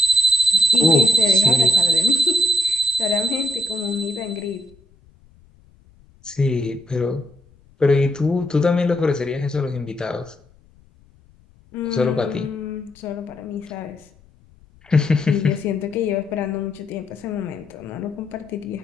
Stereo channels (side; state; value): left; noise; rumble, 29 dB below the sound